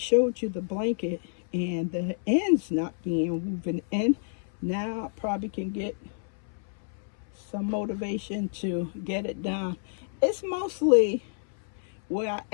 you the blanket and the ends not being woven in, now I probably can get some motivation to get it done. It's mostly where I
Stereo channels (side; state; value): right; silent; 59 dB below the other